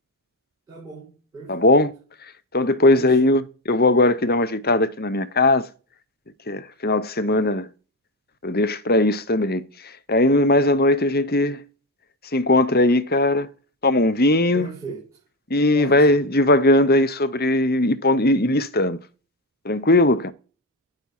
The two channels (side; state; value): both; normal; correlation 0.14